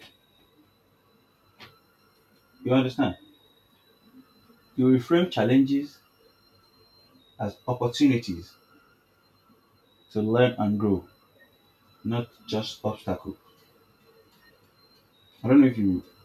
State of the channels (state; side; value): identical; both; correlation 1.00